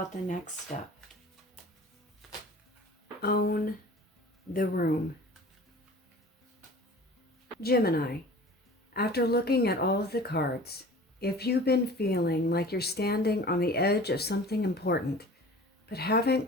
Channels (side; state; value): both; normal; correlation 0.42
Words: the next step? Own the room. Gemini, after looking at all of the cards, if you've been feeling like you're standing on the edge of something important, but haven't